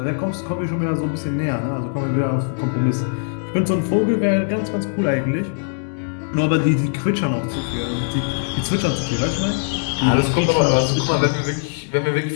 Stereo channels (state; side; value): silent; right; 65 dB below the other